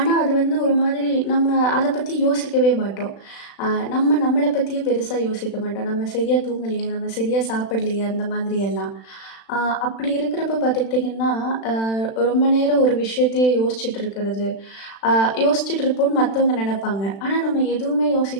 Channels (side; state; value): right; late; 36 ms